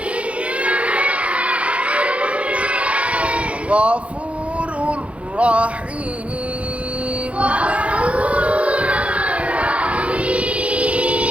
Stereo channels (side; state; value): left; late; 0.063 ms